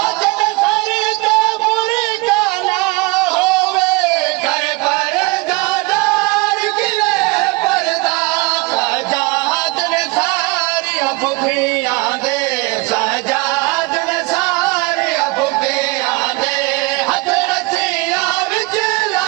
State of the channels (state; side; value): quieter; left; 25.0 dB